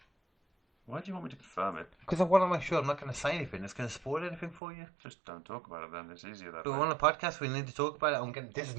Why do you want me to confirm it? Because I want to make sure I'm not going to say anything that's going to spoil anything for you. Just don't talk about it then. It's easier that But way. we're on a podcast. We need to talk about it. This is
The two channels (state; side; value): drops out; left; at 4.6 s